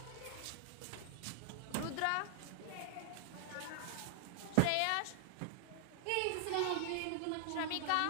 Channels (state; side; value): different; both; correlation -0.01